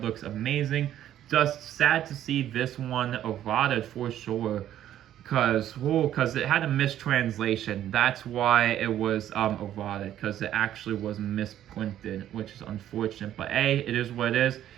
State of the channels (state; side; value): quieter; left; 11.6 dB